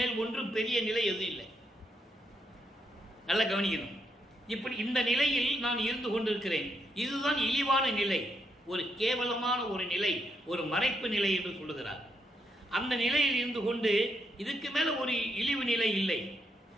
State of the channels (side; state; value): both; normal; correlation 0.78